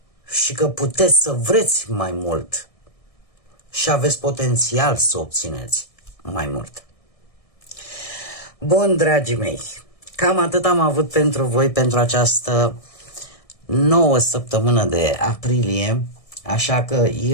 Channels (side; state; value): right; late; 1.6 ms